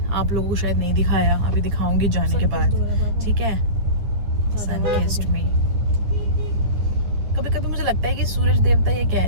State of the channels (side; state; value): left; late; 9.9 ms